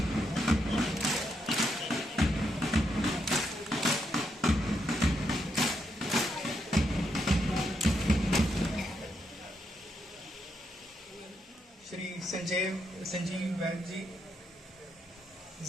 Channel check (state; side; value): normal; both; correlation 0.80